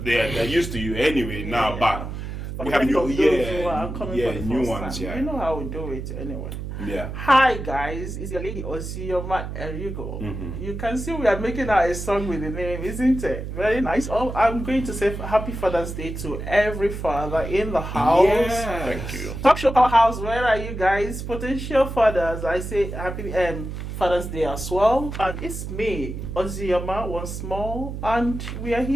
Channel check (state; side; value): noise; right; hum, 7 dB below the sound